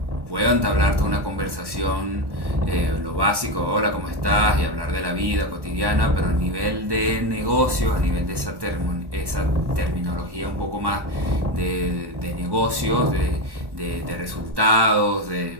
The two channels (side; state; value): left; late; 1.1 ms